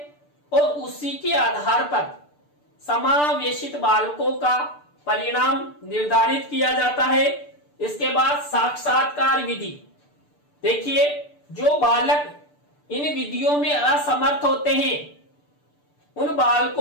और उसी के आधार पर समावेशित बालकों का परिणाम निर्धारित किया जाता है। इसके बाद साक्षात्कार विधि। देखिए, जो बालक इन विधियों में असमर्थ होते हैं उन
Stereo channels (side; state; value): right; late; 6.8 ms